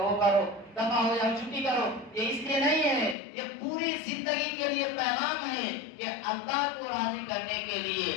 وہ کرو، دفع ہو جاؤ چھٹی کرو، یہ اس لیے نہیں ہے، یہ پوری زندگی کے لیے پیغام ہے کہ اللہ کو راضی کرنے کے لیے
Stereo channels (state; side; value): drops out; right; at 3.2 s